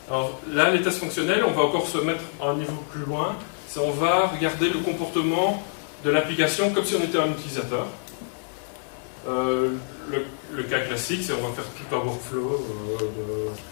Alors là, les tests fonctionnels, on va encore se mettre à un niveau plus loin. On va regarder le comportement de l'application comme si on était un utilisateur. Le cas classique, c'est on va faire tout un workflow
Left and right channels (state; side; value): silent; right; digital silence